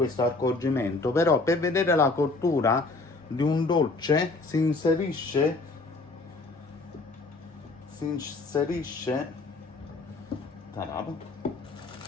accorgimento, però per vedere la cottura di un dolce si inserisce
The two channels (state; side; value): quieter; right; 3.5 dB